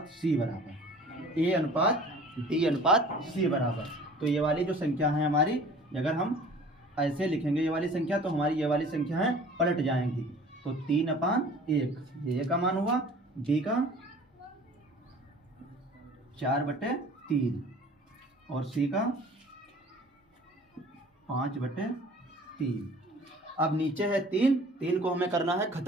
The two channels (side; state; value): both; normal; correlation 0.47